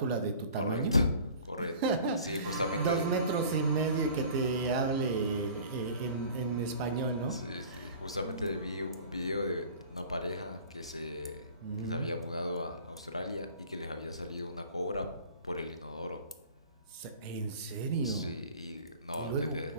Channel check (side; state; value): both; inverted; correlation -0.45